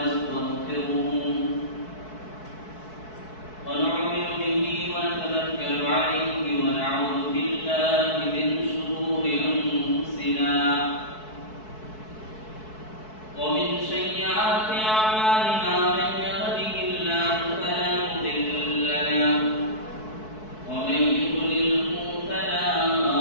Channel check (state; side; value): late; right; 4.6 ms